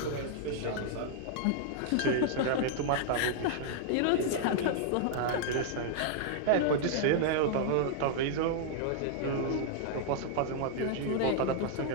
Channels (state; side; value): different; both; correlation -0.01